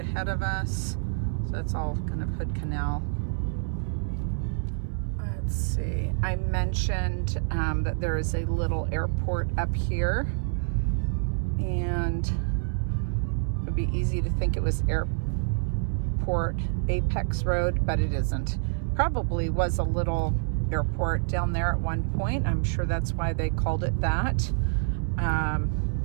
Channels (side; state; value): left; silent; 60 dB below the other